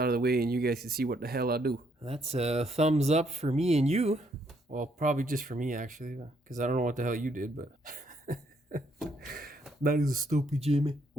of the way and you guys can see what the hell I do. That's a thumbs up for me and you. Well, probably just for me, actually, because I don't know what the hell you did, but... That is stupid, Jimmy.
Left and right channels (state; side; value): normal; both; correlation 0.71